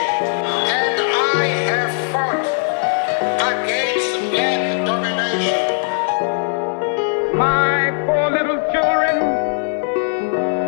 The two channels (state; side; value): silent; right; digital silence